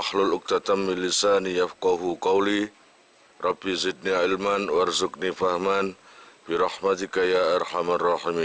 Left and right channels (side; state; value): both; identical; correlation 1.00